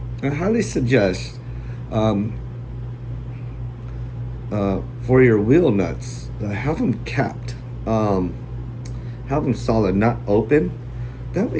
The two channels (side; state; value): both; identical; correlation 1.00